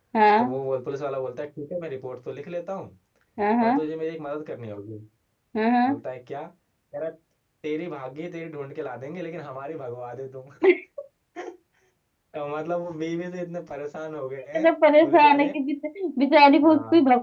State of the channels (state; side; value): identical; both; correlation 1.00